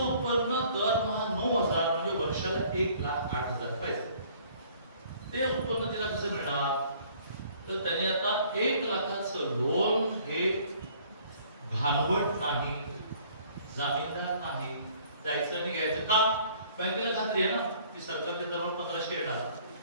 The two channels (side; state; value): both; inverted; correlation -0.57